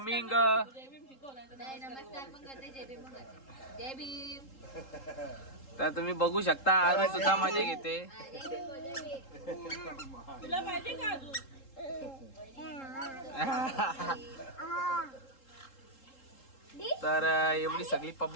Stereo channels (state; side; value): late; right; 3.8 ms